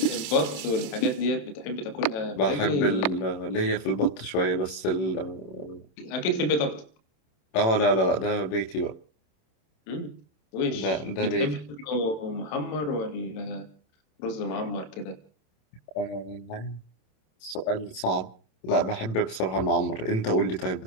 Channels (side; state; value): right; late; 26 ms